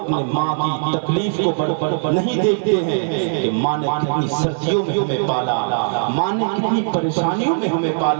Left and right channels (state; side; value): silent; left; digital silence